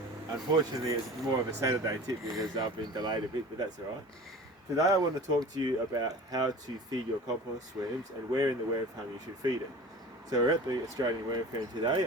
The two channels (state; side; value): normal; both; correlation 0.39